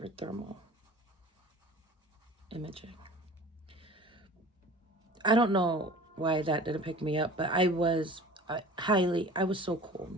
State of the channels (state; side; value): normal; both; correlation 0.42